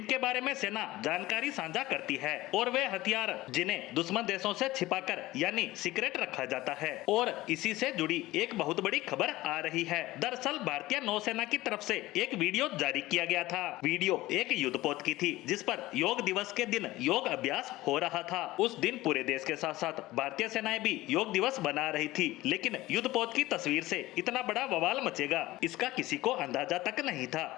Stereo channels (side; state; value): right; quieter; 17.8 dB